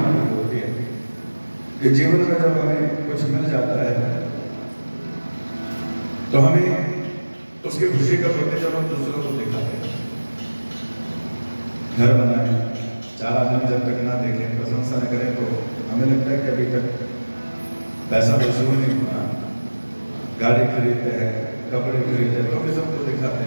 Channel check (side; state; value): both; inverted; correlation -1.00